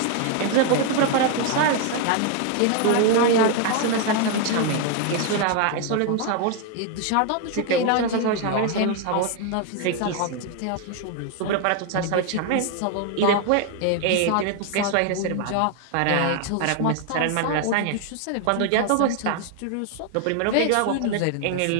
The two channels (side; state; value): both; different; correlation 0.01